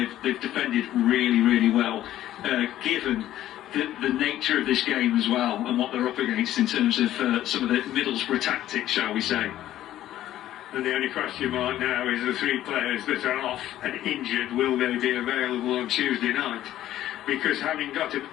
they've defended really, really well, given the nature of this game as well, and what they're up against in terms of some of the Middlesbrough tactics, shall we say. And the only question mark now is the three players that are off and injured, will they be available on Tuesday night? Because having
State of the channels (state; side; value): quieter; right; 13.0 dB